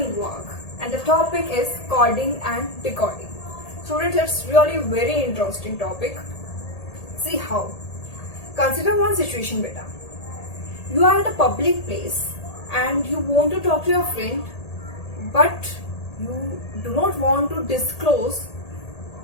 work and the topic is coding and decoding. Students, it's really very interesting topic. See how. Consider one situation beta. You are at a public place and you want to talk to your friend but you do not want to disclose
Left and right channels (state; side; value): late; right; 1.8 ms